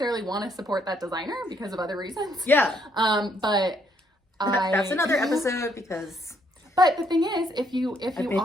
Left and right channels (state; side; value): normal; both; correlation 0.70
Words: want to support that designer because of other reasons. Yeah. But that's another episode because... But the thing is, if you